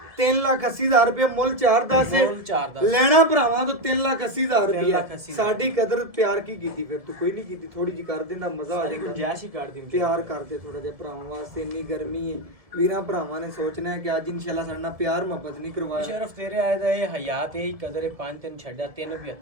3,80,000 ਰੁਪਏ ਮੁੱਲ 4-10 ਹੈ ਮੁੱਲ 4-10 ਲੈਣਾ ਭਰਾਵਾਂ ਤੋਂ 3,80,000 ਰੁਪਏ 3,80,000 ਸਾਡੀ ਕਦਰ ਪਿਆਰ ਕੀ ਕੀਤੀ ਫਿਰ ਤੂੰ ਕੋਈ ਨਹੀਂ ਕੀਤੀ ਥੋੜੀ ਜੀ ਕਰ ਦਿੰਦਾ ਮਜ਼ਾ ਆ ਸਾਰੀ ਜਾਂਦਾ ਗੁੰਜਾਇਸ਼ ਹੀ ਕਰ ਦੀ ਪਿਆਰ ਕਰਦੇ ਥੋੜਾ ਜਿਹਾ ਭਰਾਵਾਂ ਵਾਸਤੇ ਇੰਨੀ ਗਰਮੀ ਹੈ ਵੀਰਾਂ ਭਰਾਵਾਂ ਨੇ ਸੋਚਣਾ ਹੈ ਕਿ ਅੱਜ ਇਨਸ਼ਾਅੱਲਾ ਸਾਡੇ ਨਾਲ ਪਿਆਰ ਮੁਹੱਬਤ ਨਹੀਂ ਕਰਵਾਇਆ ਮੁਸ਼ਰਫ ਤੇਰੇ ਆਏ ਦਾ ਇਹ ਹਯਾਤ ਇਹ ਕਦਰ ਹੈ 5-3 ਛੱਡਿਆ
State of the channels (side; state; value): left; late; 1.7 ms